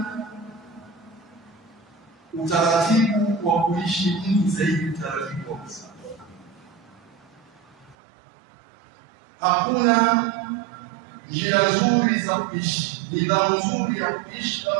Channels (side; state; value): left; drops out; at 8.0 s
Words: utaratibu wa kuishi mtu zaidi utaratibu wa Uislamu. Hakuna njia nzuri za kuishi, nidhamu nzuri ya kuishi